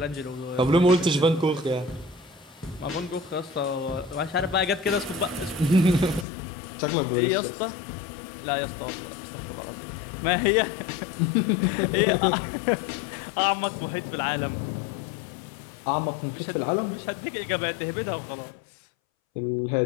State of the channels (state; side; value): drops out; right; at 6.2 s